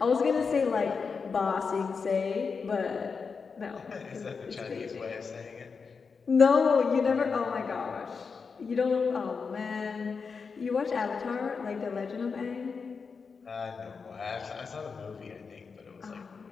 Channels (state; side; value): quieter; right; 5.3 dB